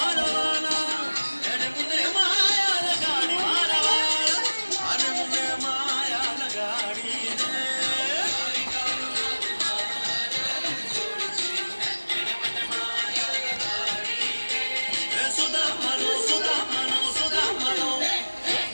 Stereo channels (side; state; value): both; inverted; correlation -1.00